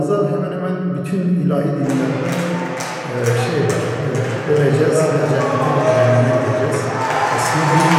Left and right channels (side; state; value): both; identical; correlation 1.00